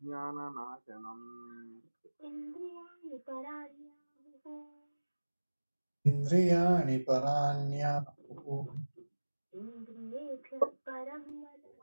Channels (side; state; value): both; inverted; correlation -1.00